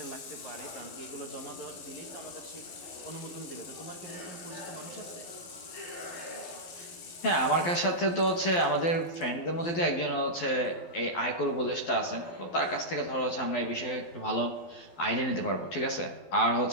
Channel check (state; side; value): late; right; 12 ms